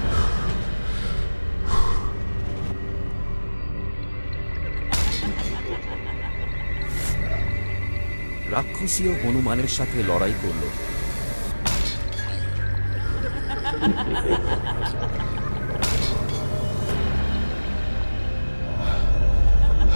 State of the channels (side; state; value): both; inverted; correlation -1.00